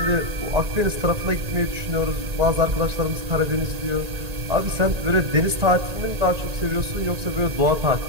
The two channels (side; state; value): left; late; 1.9 ms